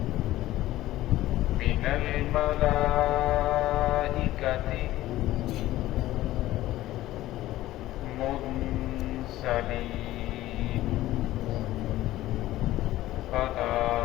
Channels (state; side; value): quieter; right; 15.5 dB